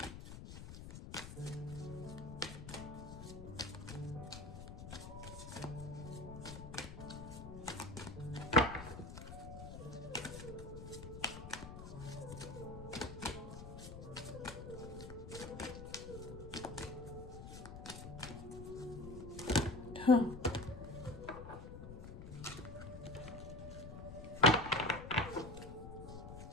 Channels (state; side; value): noise; left; rumble, 10 dB below the sound